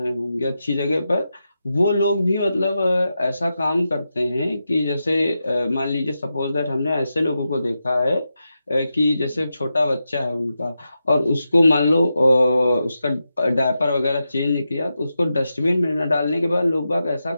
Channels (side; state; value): both; inverted; correlation -0.89